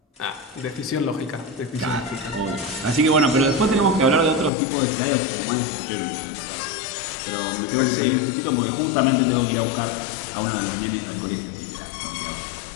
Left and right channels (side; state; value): right; drops out; at 4.5 s